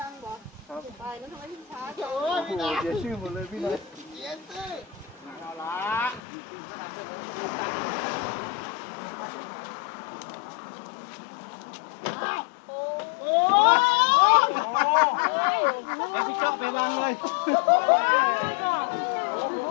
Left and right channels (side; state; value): right; drops out; at 6.2 s